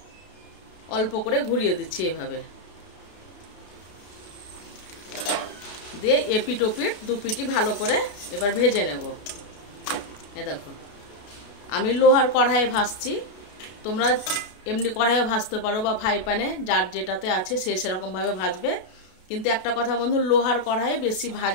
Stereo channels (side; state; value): right; late; 32 ms